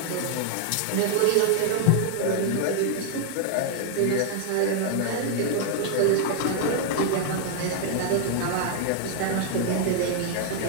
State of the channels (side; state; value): both; different; correlation 0.00